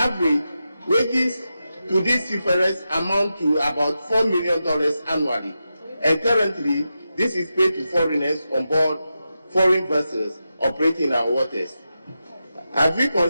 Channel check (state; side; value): inverted; both; correlation -0.90